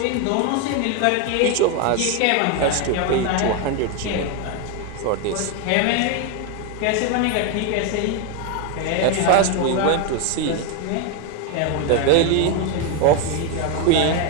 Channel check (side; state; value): both; different; correlation 0.02